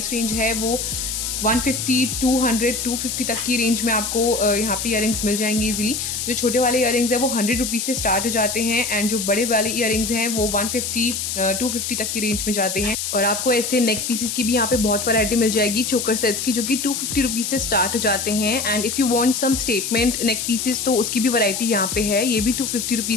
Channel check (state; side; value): noise; left; hiss, 3 dB below the sound